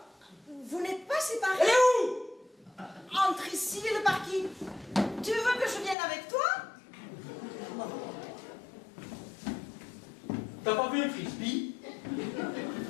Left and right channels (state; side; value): drops out; right; at 6.0 s